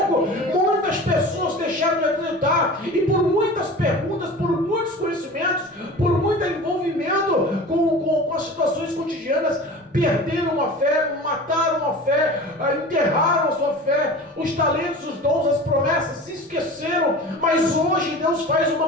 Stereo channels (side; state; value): both; normal; correlation 0.37